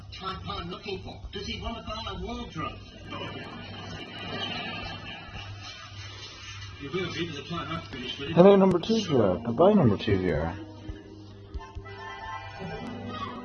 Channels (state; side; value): identical; both; correlation 1.00